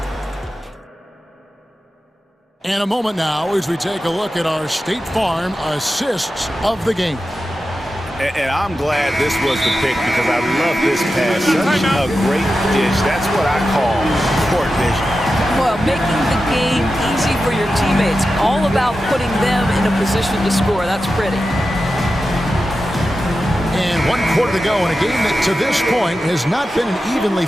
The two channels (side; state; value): both; normal; correlation 0.92